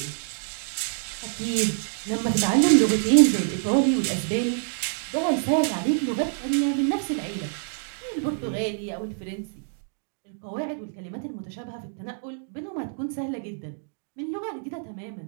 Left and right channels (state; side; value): silent; left; digital silence